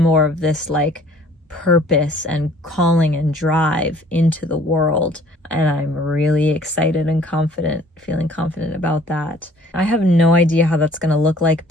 more of this like purpose and calling and drive into the world. And I'm really excited and feeling confident about that. I have no idea how that's going to look like,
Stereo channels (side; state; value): both; normal; correlation 0.55